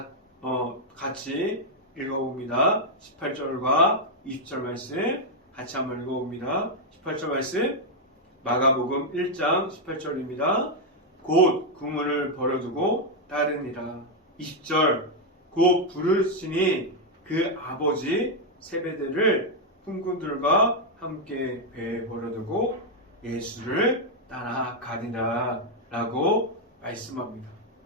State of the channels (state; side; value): normal; both; correlation 0.00